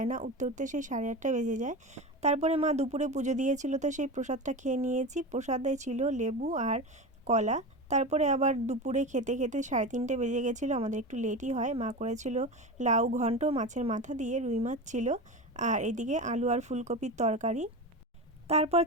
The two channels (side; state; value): both; normal; correlation 0.25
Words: না। উঠতে উঠতে সেই 8:30 বেজে যায়। তারপরে মা দুপুরে পুজো দিয়েছিল তো সেই প্রসাদটা খেয়ে নিয়েছি। প্রসাদে ছিল লেবু আর কলা। তারপরে আবার দুপুরে খেতে খেতে 3:30 বেজে গেছিলো, আমাদের একটু লেটই হয়। মা করেছিল লাউ ঘন্ট, মাছের মাথা দিয়ে, রুই মাছ ছিল, আর এদিকে আলু আর ফুলকপির তরকারি। তারপর